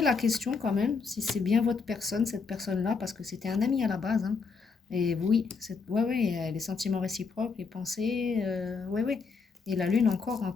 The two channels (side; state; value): right; quieter; 5.0 dB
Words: la question quand même, si c'est bien votre personne, cette personne-là, parce que c'était un ami à la base. Hein. Et oui, ouais, les sentiments réciproques, les pensées, ouais. Et la lune encore en